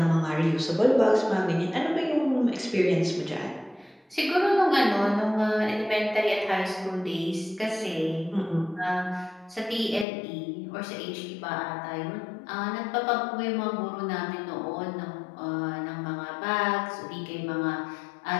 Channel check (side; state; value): right; drops out; at 10.1 s